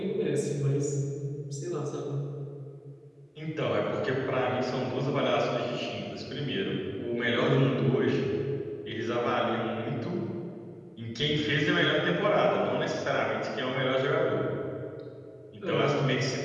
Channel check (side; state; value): both; identical; correlation 1.00